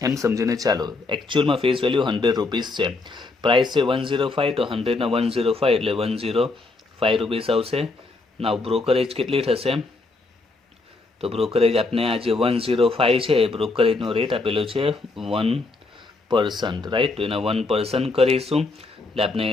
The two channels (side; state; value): right; quieter; 3.5 dB